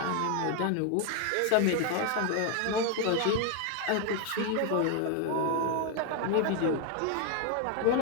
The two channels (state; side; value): different; both; correlation 0.01